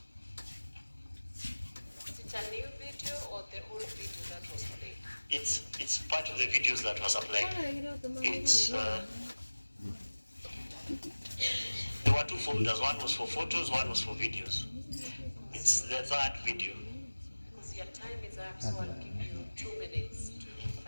old video that was played? It's part of the videos that was applied. It's there were two folders. One was for photos, one was for videos. It's the third video. Because your time is up, so I'll give you 2 minutes to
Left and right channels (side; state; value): both; inverted; correlation -1.00